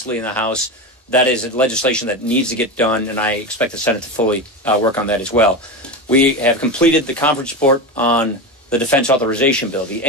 in the House. That is legislation that needs to get done, and I expect the Senate to fully work on that as well. We have completed the conference report on the Defense Authorization Bill, the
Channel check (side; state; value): both; normal; correlation 0.20